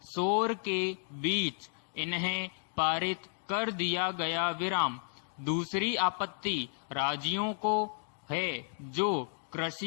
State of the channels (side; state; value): right; silent; digital silence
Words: शोर के बीच इन्हें पारित कर दिया गया विराम। दूसरी आपत्ति राज्यों को है जो